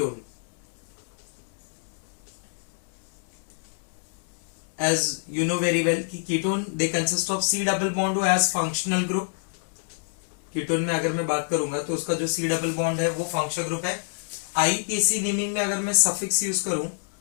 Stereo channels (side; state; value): right; silent; digital silence